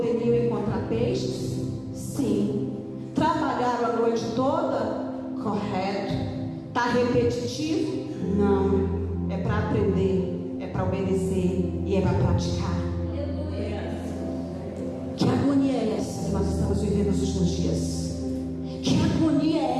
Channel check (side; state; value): both; identical; correlation 1.00